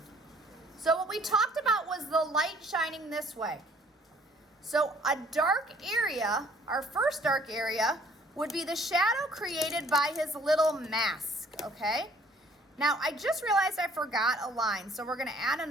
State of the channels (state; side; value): normal; both; correlation 0.59